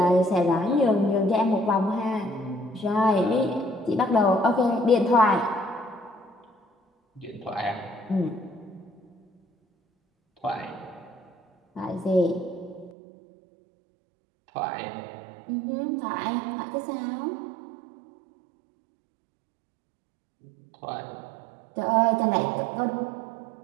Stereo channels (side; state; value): left; drops out; at 13.0 s